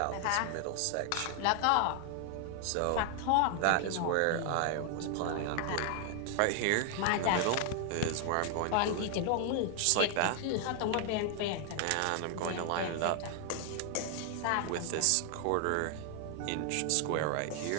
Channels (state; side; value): different; both; correlation 0.00